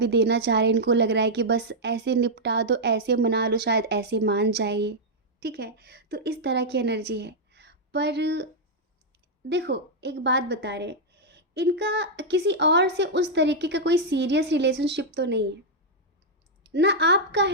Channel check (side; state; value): both; normal; correlation -0.04